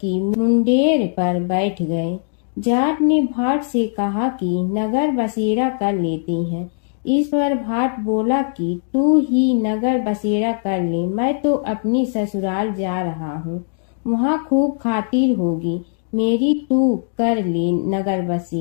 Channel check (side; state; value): right; silent; digital silence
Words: मुंडेर पर बैठ गए। जाट ने भाट से कहा कि नगर बसेरा कर लेते हैं। इस पर भाट बोला कि तू ही नगर बसेरा कर ले, मैं तो अपनी ससुराल जा रहा हूँ, वहाँ खूब खातिर होगी मेरी, तू कर ले नगर